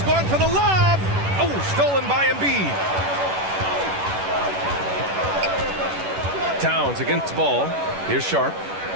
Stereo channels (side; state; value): left; late; 11 ms